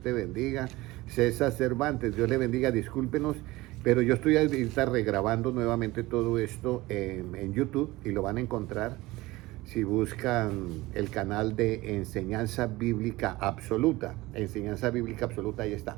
bendiga. César Cervantes, Dios le bendiga. Discúlpenos, pero yo estoy ahorita regrabando nuevamente todo esto en YouTube y lo van a encontrar si buscan el canal de Enseñanza Bíblica Absoluta. Enseñanza Bíblica Absoluta, ahí está.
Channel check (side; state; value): left; quieter; 19.7 dB